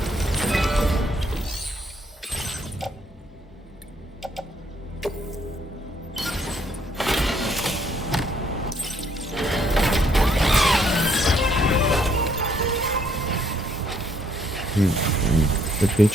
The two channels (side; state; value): both; normal; correlation 0.68